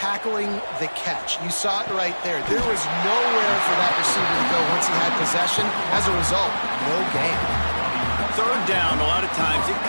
the catch. You saw it right there. There was nowhere for that receiver to go once he had possession. As a result, no gain. 3rd down, a lot of times it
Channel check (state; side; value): inverted; both; correlation -1.00